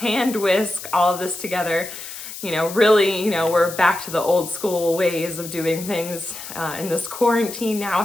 whisk all of this together. Really, we're back to the old school ways of doing things in this quarantine now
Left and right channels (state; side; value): noise; left; hiss, 11 dB below the sound